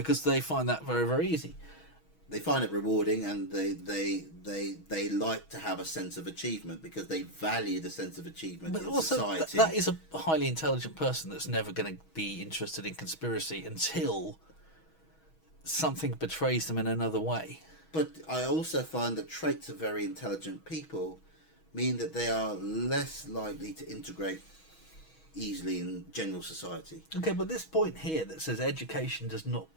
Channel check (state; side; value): late; right; 6.2 ms